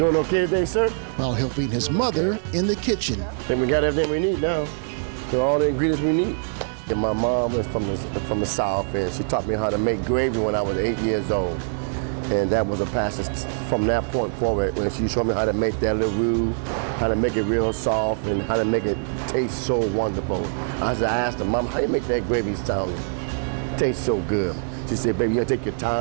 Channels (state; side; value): silent; left; digital silence